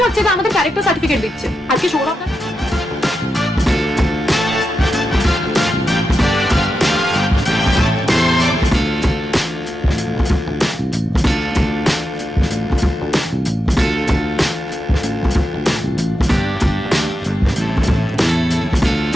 হচ্ছে যে আমাদের ক্যারেক্টার সার্টিফিকেট দিচ্ছে। আজকে সৌরভ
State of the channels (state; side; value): normal; both; correlation 0.88